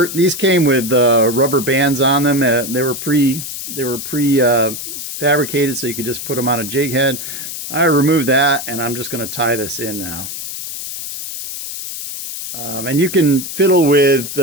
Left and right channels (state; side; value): noise; left; hiss, 8 dB below the sound